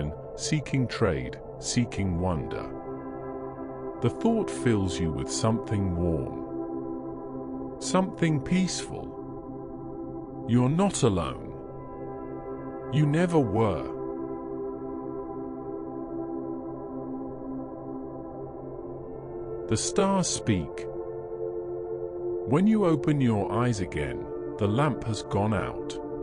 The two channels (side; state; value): both; identical; correlation 1.00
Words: seeking trade, seeking wonder. The thought fills you with something warm. Something peaceful. You're not alone. You never were. The stars speak. When you open your eyes again, the lamp has gone out.